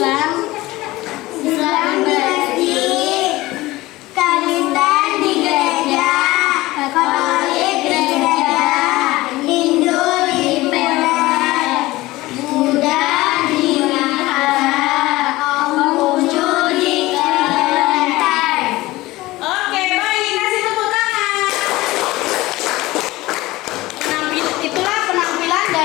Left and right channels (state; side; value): quieter; right; 18.9 dB